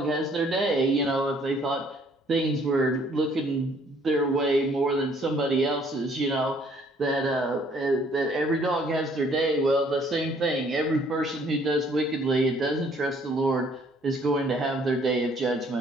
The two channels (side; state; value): both; normal; correlation 0.62